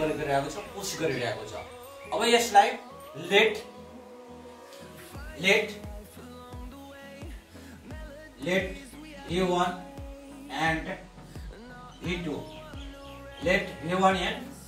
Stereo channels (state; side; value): identical; both; correlation 1.00